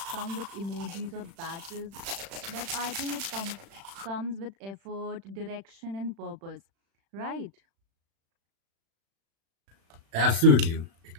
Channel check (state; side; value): late; left; 36 ms